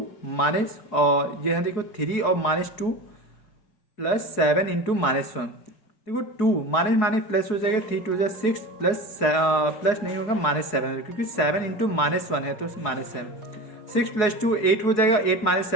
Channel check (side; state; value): right; late; 4.7 ms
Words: माइनस, और ये देखो 3 और माइनस 2 प्लस 7 इंटू माइनस 1। देखो 2 माइनस माइनस प्लस हो जाएगा, 3 2 6 प्लस नहीं होगा, माइनस 7, क्योंकि 7 इंटू माइनस 1 है तो माइनस 7। 6 प्लस 2 8 हो जाएगा, 8 माइनस